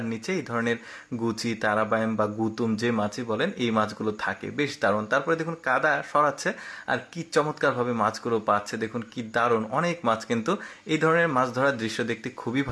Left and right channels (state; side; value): identical; both; correlation 1.00